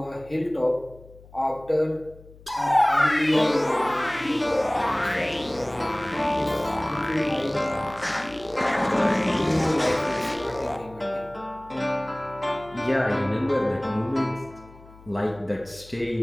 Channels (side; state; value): left; noise; hum, 22 dB below the sound